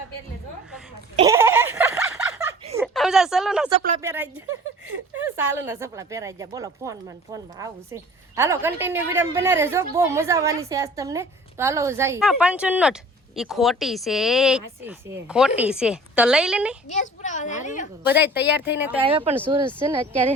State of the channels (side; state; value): both; normal; correlation 0.46